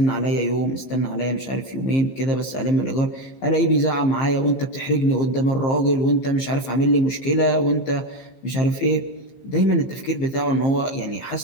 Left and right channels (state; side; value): late; right; 15 ms